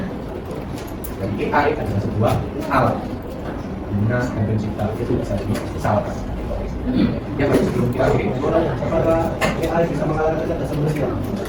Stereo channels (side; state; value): both; identical; correlation 1.00